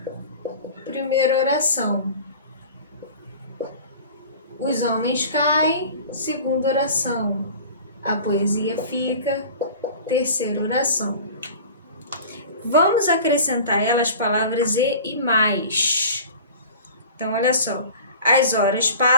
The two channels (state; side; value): inverted; both; correlation -0.40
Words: primeira oração. Os homens caem, segunda oração. A poesia fica, terceira oração. Vamos acrescentar elas palavras e mais. Então, olha só. As horas